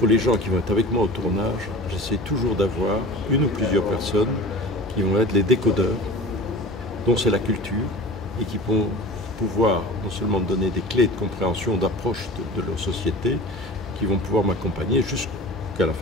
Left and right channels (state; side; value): normal; both; correlation 0.37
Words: les gens qui vont être avec moi au tournage, j'essaie toujours d'avoir une ou plusieurs personnes qui vont être les décodeurs, dont c'est la culture, et qui vont pouvoir non seulement me donner des clés de compréhension, d'approche de leur société, qui vont pouvoir m'accompagner jusqu'à la